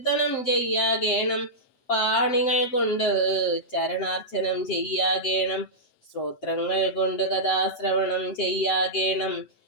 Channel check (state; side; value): late; right; 7.7 ms